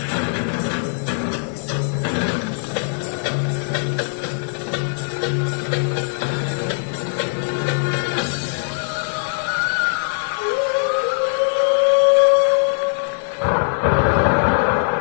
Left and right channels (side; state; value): right; silent; 64 dB below the other